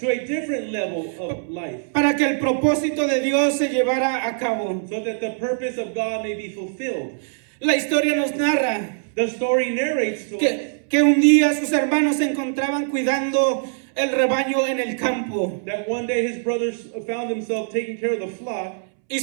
a different level of life, para que el propósito de Dios se llevara a cabo. so that the purpose of God may be fulfilled. La historia nos narra The story narrates to us que un día sus hermanos se encontraban cuidando el rebaño en el campo that one day his brothers found themselves taking care of the flock, y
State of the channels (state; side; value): silent; left; 64 dB below the other